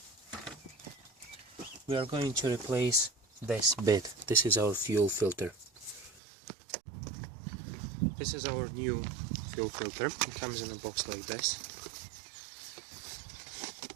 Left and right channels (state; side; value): drops out; left; at 6.2 s